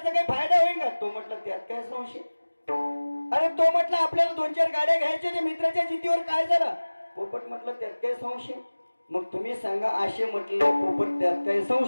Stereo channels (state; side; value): inverted; both; correlation -1.00